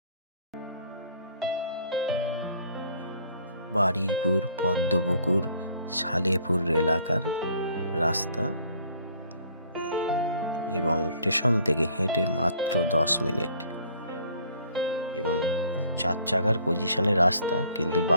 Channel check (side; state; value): both; inverted; correlation -0.59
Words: বারুইপুর পদ্মপুকুর সালেপুর এলাকার রাস্তা এবং স্টেশন থেকে হেঁটে মাত্র 10 মিনিট এবং 4 চাকার পজিশনে রাস্তা, কিন্তু